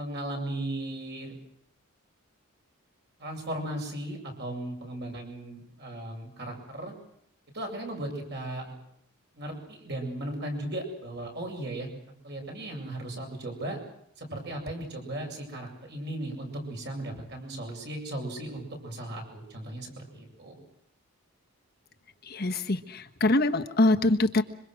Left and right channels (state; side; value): normal; both; correlation 0.54